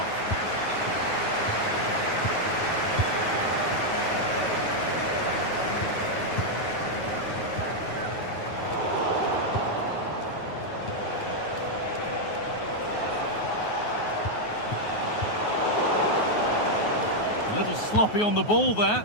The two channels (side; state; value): right; late; 9.4 ms